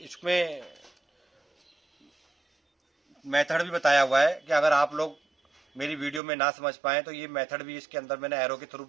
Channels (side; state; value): left; drops out; at 6.2 s